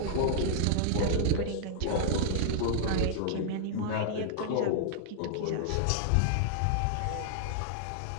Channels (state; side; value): different; both; correlation -0.01